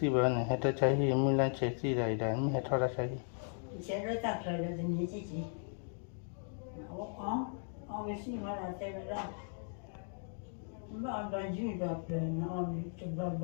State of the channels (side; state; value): right; silent; 53 dB below the other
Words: when I had a chahi, Mulan Chessy, I done, had a chahi.